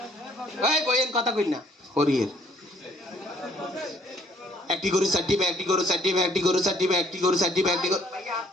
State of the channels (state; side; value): normal; both; correlation 0.62